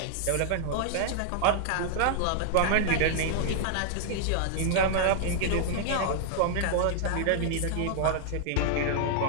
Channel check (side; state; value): both; different; correlation -0.01